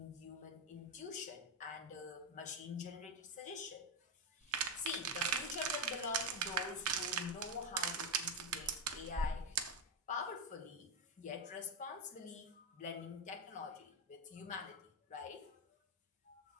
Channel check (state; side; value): normal; both; correlation 0.07